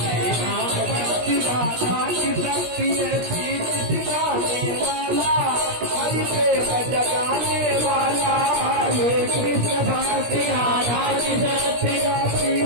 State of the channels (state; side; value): late; left; 17 ms